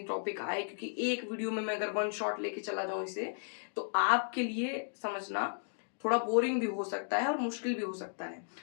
टॉपिक आए, क्योंकि एक वीडियो में मैं अगर वन शॉट लेके चला जाऊं इसे तो आपके लिए समझना थोड़ा बोरिंग भी हो सकता है और मुश्किल भी हो सकता है।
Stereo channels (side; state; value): right; silent; digital silence